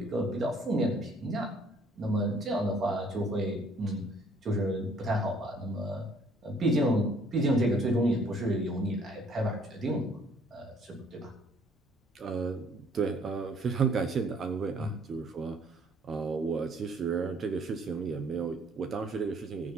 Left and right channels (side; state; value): both; normal; correlation 0.60